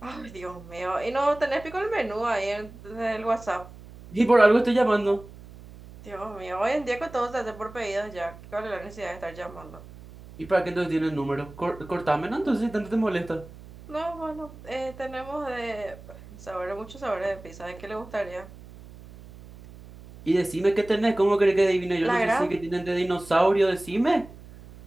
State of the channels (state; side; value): noise; right; hum, 18 dB below the sound